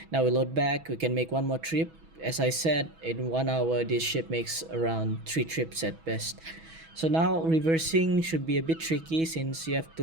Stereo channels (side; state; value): left; late; 6.2 ms